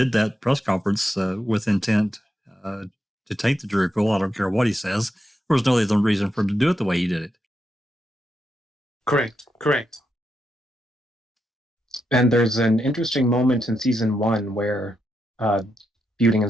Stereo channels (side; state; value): both; normal; correlation 0.84